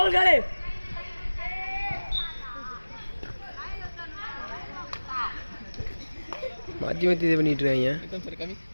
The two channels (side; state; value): both; inverted; correlation -1.00